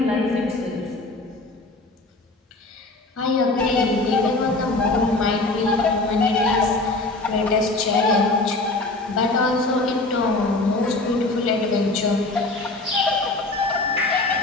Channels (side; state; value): right; quieter; 3.1 dB